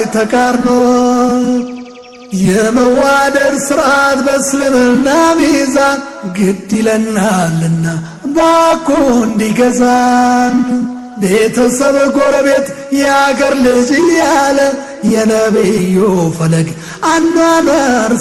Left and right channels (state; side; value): identical; both; correlation 1.00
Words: ተቃርኖ የመዋደድ ስርዓት በእስልምና ሚዛን ግድ ይለናልና ባኮ እንዲገዛን ቤተሰብ ጎረቤት የአገር ልጅ እያለ የነቢዩ ፈለግ አኗኗር